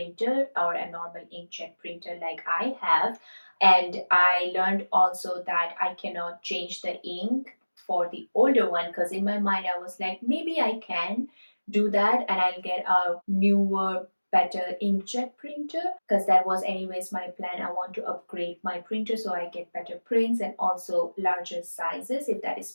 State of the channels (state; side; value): inverted; both; correlation -1.00